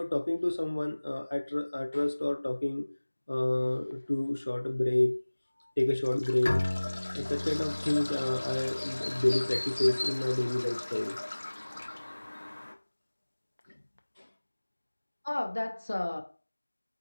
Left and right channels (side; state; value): both; inverted; correlation -1.00